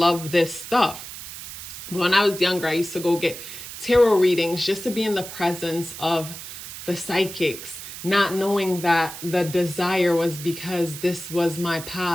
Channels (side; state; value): right; noise; hiss, 11 dB below the sound